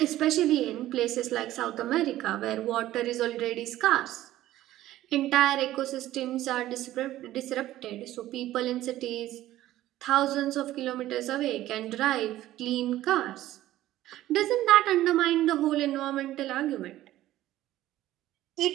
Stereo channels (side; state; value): left; quieter; 14.6 dB